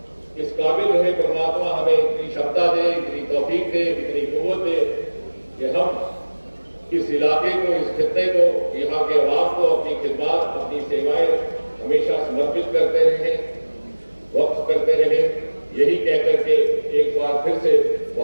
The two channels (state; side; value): inverted; both; correlation -1.00